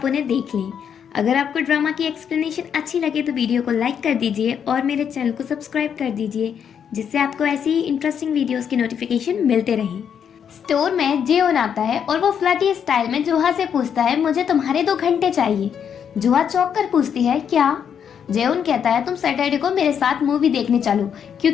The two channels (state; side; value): quieter; right; 8.0 dB